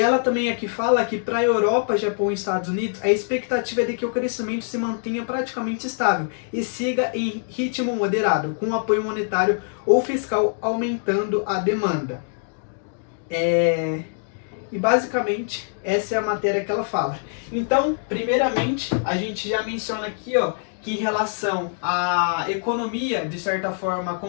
também aqui fala que para a Europa, Japão e Estados Unidos, a expectativa é de que o crescimento se mantenha praticamente estável e siga em ritmo moderado, com apoio monetário ou fiscal aumentando a demanda. E basicamente essa é a matéria que ela fala. Então, primeiramente, a gente já menciona aqui, ó, que em relação à economia, de certa forma,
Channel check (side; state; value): right; silent; digital silence